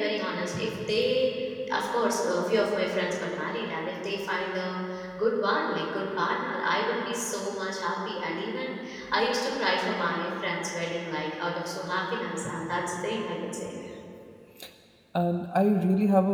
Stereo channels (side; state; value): both; identical; correlation 1.00